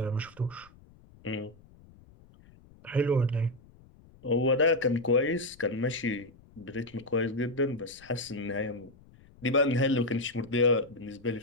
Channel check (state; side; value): noise; left; rumble, 25 dB below the sound